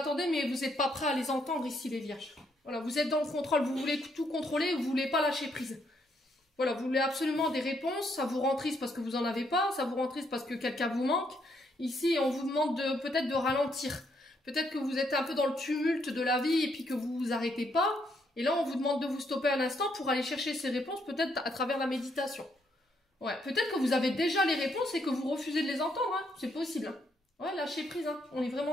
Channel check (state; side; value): normal; both; correlation 0.74